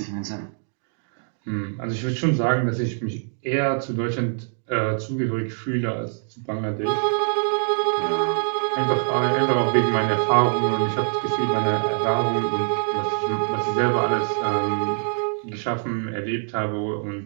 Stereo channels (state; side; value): silent; left; 63 dB below the other